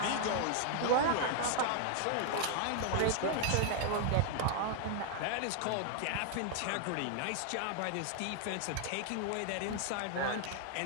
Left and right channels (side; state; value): both; different; correlation 0.00